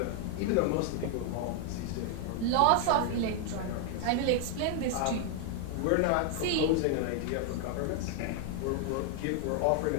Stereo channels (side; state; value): both; different; correlation 0.00